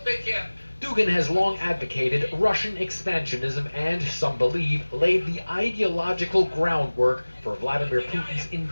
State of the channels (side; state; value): both; inverted; correlation -1.00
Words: Dugin has long advocated Russian expansionism and, some believe, laid the ideological groundwork for Vladimir Putin's